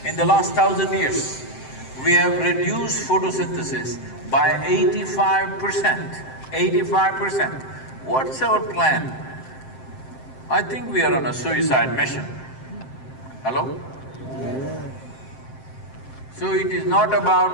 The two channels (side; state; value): right; late; 7.7 ms